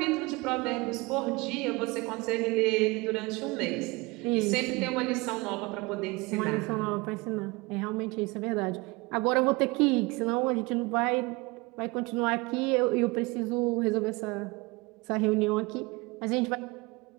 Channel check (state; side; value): quieter; left; 24.8 dB